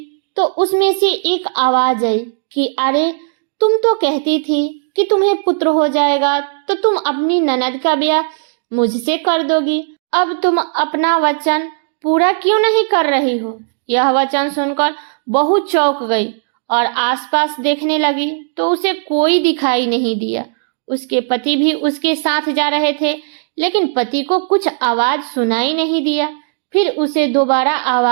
तो उसमें से एक आवाज आई कि अरे, तुम तो कहती थी कि तुम्हें पुत्र हो जाएगा तो तुम अपनी ननद का ब्याह मुझसे कर दोगी। अब तुम अपना वचन पूरा क्यों नहीं कर रही हो? यह वचन सुनकर बहू चौंक गई और आसपास देखने लगी तो उसे कोई दिखाई नहीं दिया। उसके पति भी उसके साथ जा रहे थे, लेकिन पति को कुछ आवाज सुनाई नहीं दिया। फिर उसे दोबारा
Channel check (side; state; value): left; silent; digital silence